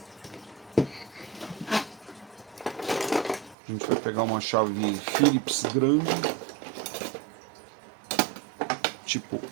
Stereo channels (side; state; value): left; drops out; at 3.6 s